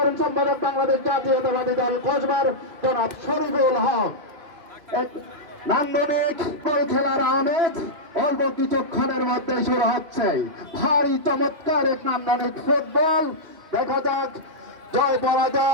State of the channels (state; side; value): late; left; 2.5 ms